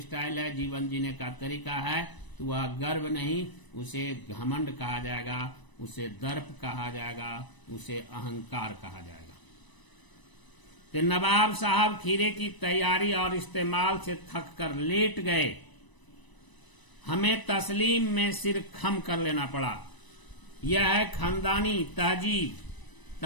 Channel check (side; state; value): right; late; 1.0 ms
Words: है, जीवन जीने का तरीका है, तो वह गर्व नहीं, उसे घमंड कहा जाएगा, उसे दर्प कहा जाएगा, उसे अहंकार कहा जाएगा। तो नवाब साहब खीरे की तैयारी और इस्तेमाल से थक कर लेट गए। हमें तस्लीम में सिर खम कर लेना पड़ा। यह है खानदानी तहजीब।